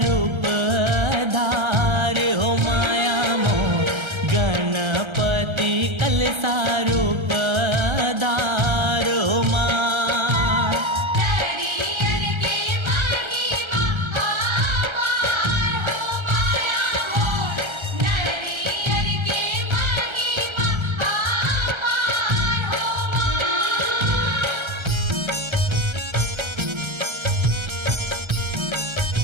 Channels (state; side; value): late; left; 1.3 ms